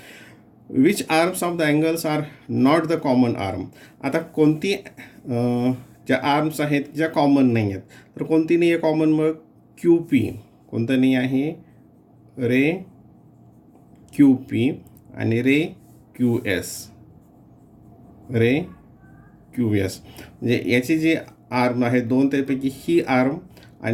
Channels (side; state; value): both; identical; correlation 1.00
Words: Which arms of the angles are not the common arm. आता कोणती ज्या आर्म्स आहेत ज्या कॉमन नाही आहेत, तर कोणती नाही आहे कॉमन, मग क्यू पी. कोणतं नाही आहे, रे क्यू पी आणि रे क्यू एस. रे क्यू एस म्हणजे याची जी आर्म आहे दोन, त्यापैकी ही आर्म